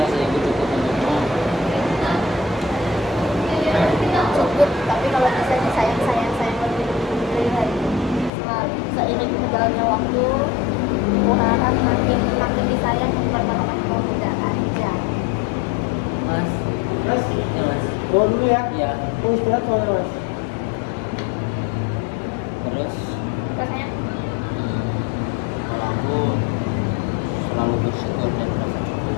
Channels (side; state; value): right; drops out; at 8.3 s